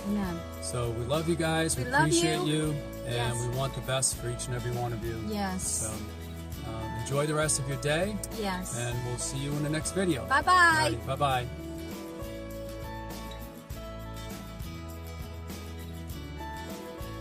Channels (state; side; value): identical; both; correlation 1.00